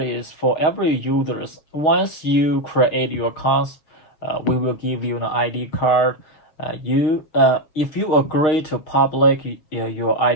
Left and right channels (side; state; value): right; late; 6.5 ms